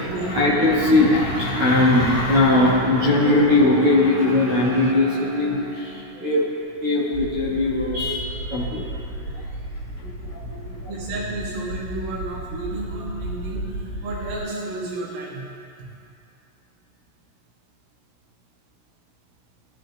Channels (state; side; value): late; left; 16 ms